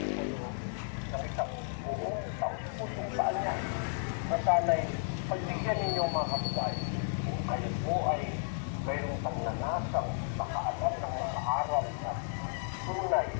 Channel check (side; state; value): right; silent; digital silence